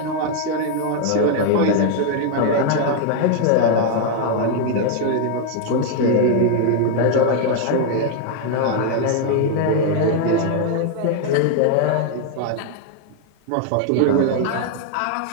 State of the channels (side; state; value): both; different; correlation 0.00